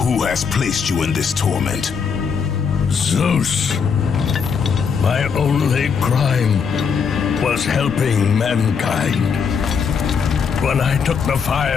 Who has placed you in this torment? Zeus. My only crime was helping mankind. When I took the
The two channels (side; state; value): right; quieter; 6.2 dB